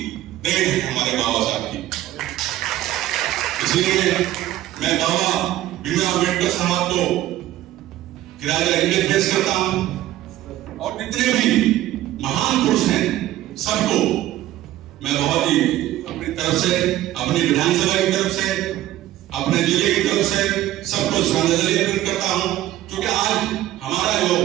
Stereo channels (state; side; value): quieter; left; 14.1 dB